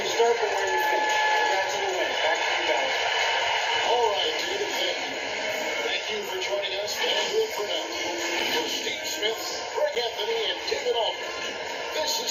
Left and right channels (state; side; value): identical; both; correlation 1.00